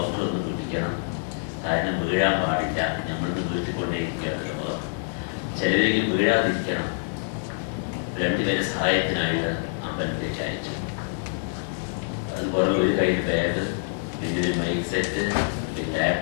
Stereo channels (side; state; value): right; silent; digital silence